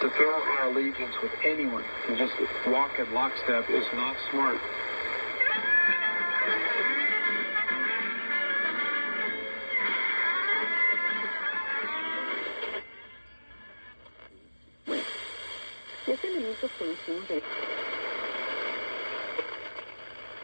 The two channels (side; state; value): both; inverted; correlation -1.00